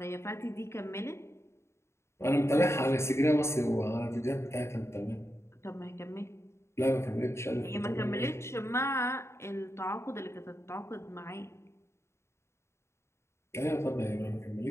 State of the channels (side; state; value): right; late; 0.13 ms